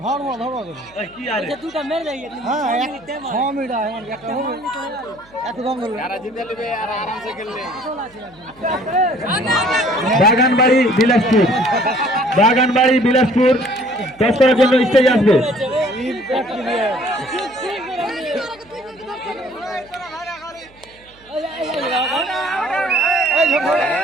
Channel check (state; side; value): noise; right; hum, 28 dB below the sound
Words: বাগানবাড়ি বিলাসপুর, বাগানবাড়ি বিলাসপুর টস করার জন্য স্টেজে আসবে।